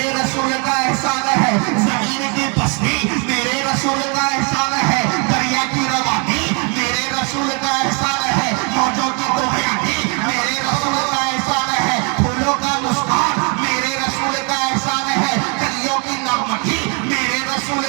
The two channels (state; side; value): quieter; left; 35.0 dB